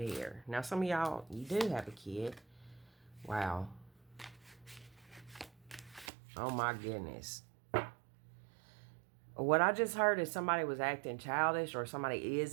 Now, some of y'all, you do have a kid. Wow. Oh, my goodness. What I just heard is somebody was acting childish or somebody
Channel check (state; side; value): drops out; left; at 6.1 s